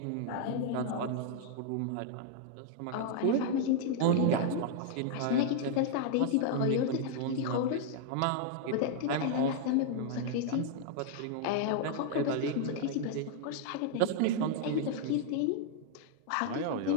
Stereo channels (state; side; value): different; both; correlation 0.00